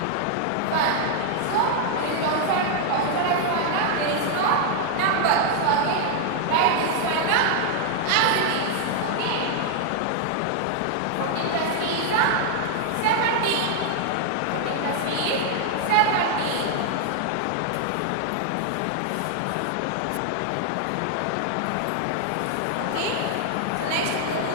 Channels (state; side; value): different; both; correlation 0.00